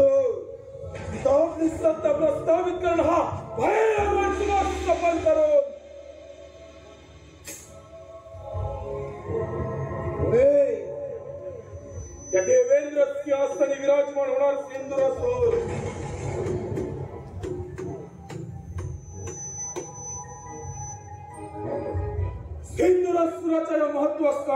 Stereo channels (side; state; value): both; identical; correlation 1.00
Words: आपली सत्ता प्रस्थापित करणं हा भयानक सफल करून त्या देवेंद्र सिंहासनी विराजमान होणार सिंधुरासुर. सिंधुरासुराच्या या